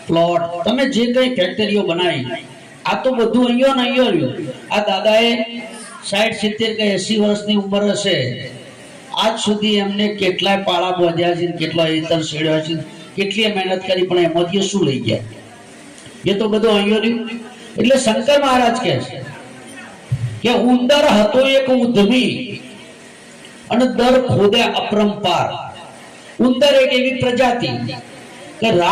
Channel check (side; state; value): both; identical; correlation 1.00